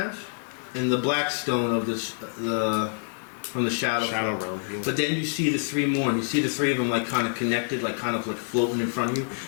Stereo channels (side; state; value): right; silent; 60 dB below the other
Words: and the black stone of the from the shadow Realm. Yeah. But then you see the three more, and you see the three of them like kind of connected, like kind of like floating in front of you.